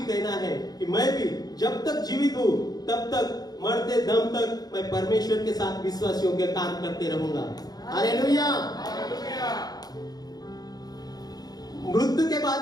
कहना है कि मैं भी जब तक जीवित हूं तब तक, मरते दम तक मैं परमेश्वर के साथ विश्वासियों के काम करते रहूंगा। हालेलुया। मृत्यु के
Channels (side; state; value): right; late; 0.19 ms